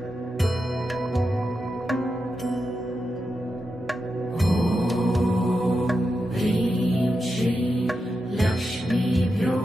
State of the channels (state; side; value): normal; both; correlation 0.88